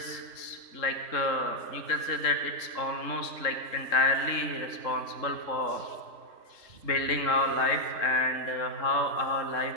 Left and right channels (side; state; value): right; late; 3.6 ms